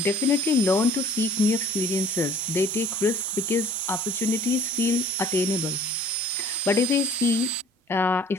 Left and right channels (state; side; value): normal; both; correlation 0.51